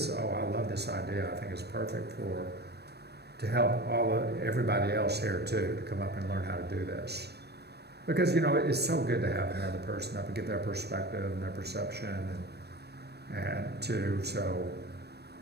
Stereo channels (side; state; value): left; late; 0.47 ms